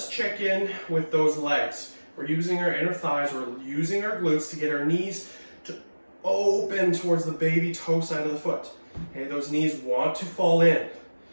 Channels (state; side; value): inverted; both; correlation -1.00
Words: check in with those legs. We're using our inner thighs, we're using our glutes to get our knees to open towards the baby toe side of the foot. Okay, those knees want to fall in.